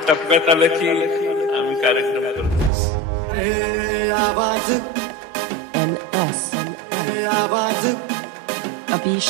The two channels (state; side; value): drops out; left; at 2.7 s